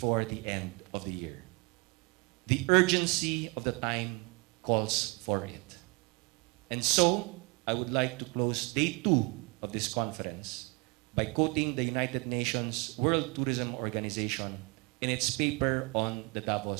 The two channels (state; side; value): quieter; left; 30.1 dB